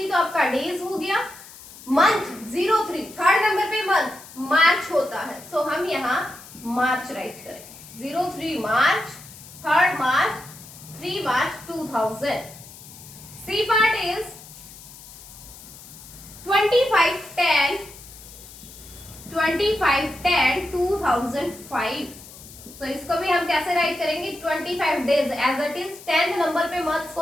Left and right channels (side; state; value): left; noise; hiss, 18 dB below the sound